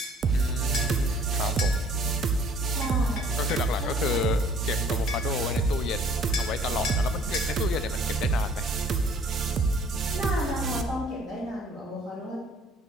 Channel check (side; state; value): both; normal; correlation 0.55